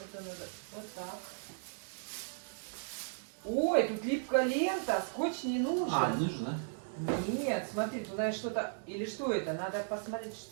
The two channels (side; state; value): left; silent; digital silence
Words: Это надо вот так. Ой, тут липкая лента. Скотч не нужен. Нужно. Нет, смотри, туда что-то... Или что это? Надо посмотреть,